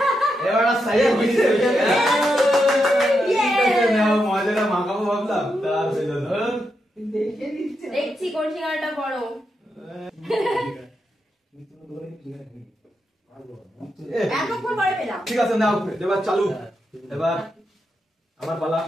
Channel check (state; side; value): normal; both; correlation 0.84